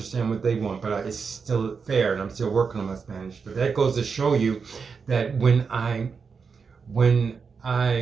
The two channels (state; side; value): quieter; left; 5.5 dB